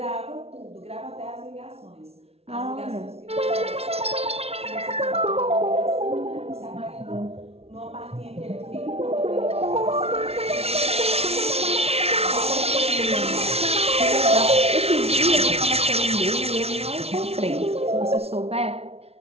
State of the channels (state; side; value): late; left; 0.30 ms